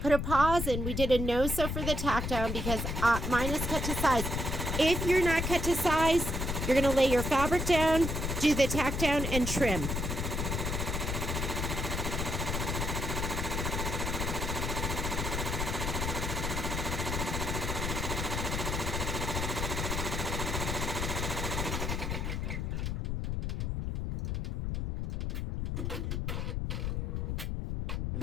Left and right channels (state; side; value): noise; left; rumble, 1 dB below the sound